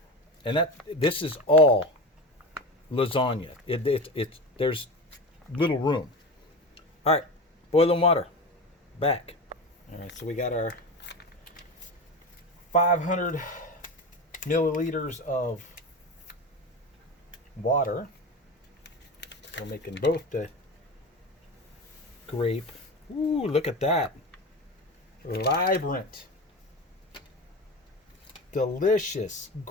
And this is all lasagna. There's little room. All right, boiling water. Back. All right, so we got our 500 milliliters of water. We're making both the grape. Ooh, look at that. Vibrant. Delicious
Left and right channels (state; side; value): normal; both; correlation 0.25